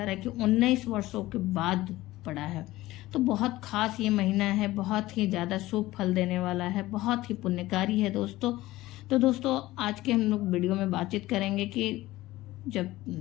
है कि 19 वर्षों के बाद पड़ा है। तो बहुत खास ये महीना है, बहुत ही ज्यादा शुभ फल देने वाला है, बहुत ही पुण्यकारी है दोस्तों। तो दोस्तों आज के हम लोग वीडियो में बातचीत करेंगे कि जब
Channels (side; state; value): right; quieter; 17.4 dB